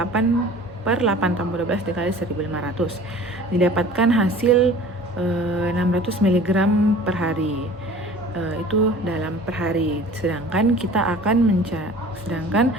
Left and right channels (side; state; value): both; normal; correlation 0.45